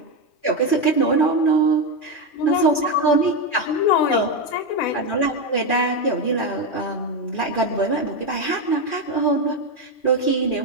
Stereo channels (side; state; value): right; late; 2.4 ms